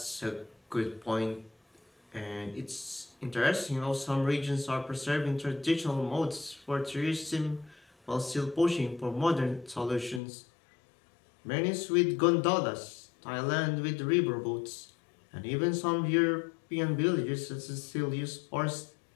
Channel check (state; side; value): drops out; right; at 10.2 s